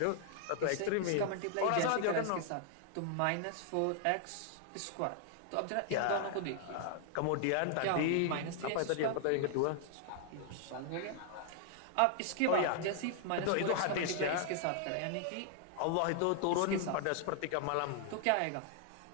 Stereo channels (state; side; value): different; both; correlation 0.00